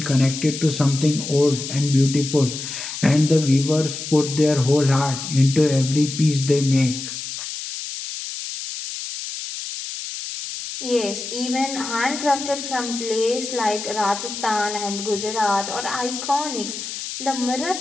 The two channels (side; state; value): left; noise; hiss, 7 dB below the sound